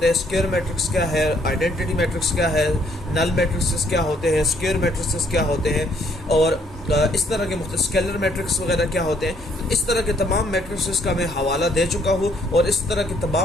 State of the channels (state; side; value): normal; both; correlation 0.66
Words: हैं, स्क्वायर मैट्रिक्स क्या है, आइडेंटिटी मैट्रिक्स क्या है, नल मैट्रिक्स क्या होते हैं, स्क्वायर मैट्रिक्स क्या होते हैं और इस तरह के स्केलर मैट्रिक्स वगैरह क्या होते हैं। इस तरह के तमाम मैट्रिक्स का मैं हवाला दे चुका हूँ और इस तरह की